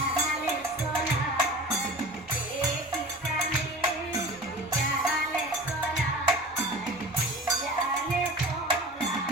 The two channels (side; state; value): both; normal; correlation 0.37